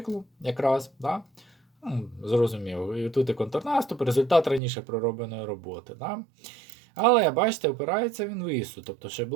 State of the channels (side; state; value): left; drops out; at 4.6 s